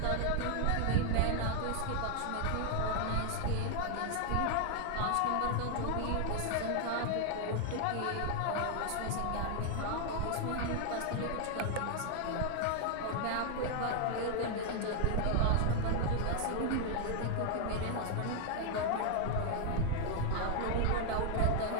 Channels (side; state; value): both; different; correlation 0.00